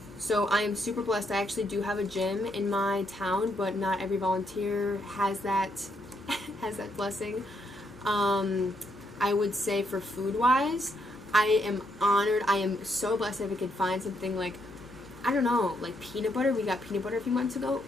So I am super blessed. I actually do have a gym in my town, but not every volunteer has that has that blessing. I would say for food wise, I am honored. I am so blessed if I could find something like, I don't know, like peanut butter. We got peanut butter a few months ago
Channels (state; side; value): normal; both; correlation 0.76